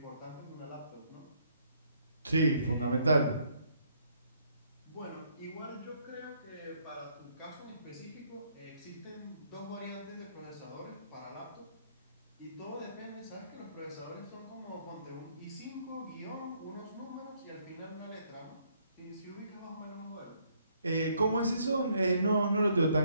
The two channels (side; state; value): both; inverted; correlation -0.68